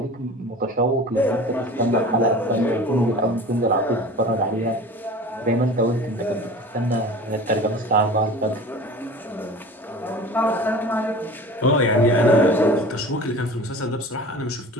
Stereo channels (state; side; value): normal; both; correlation 0.39